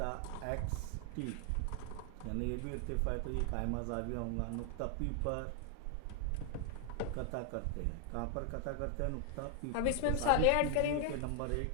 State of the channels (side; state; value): both; different; correlation 0.00